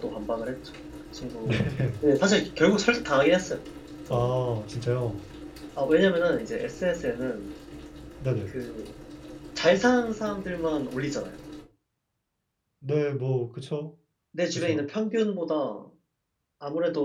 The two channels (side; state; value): both; identical; correlation 1.00